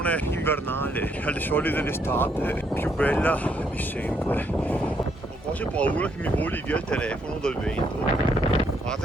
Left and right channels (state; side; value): normal; both; correlation 0.73